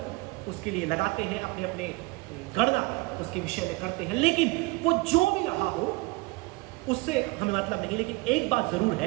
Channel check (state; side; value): quieter; left; 24.3 dB